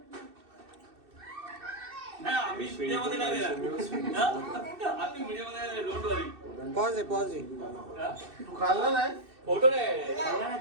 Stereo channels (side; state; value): left; late; 2.6 ms